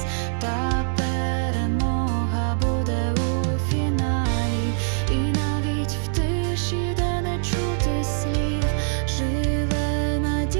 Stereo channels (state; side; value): silent; left; digital silence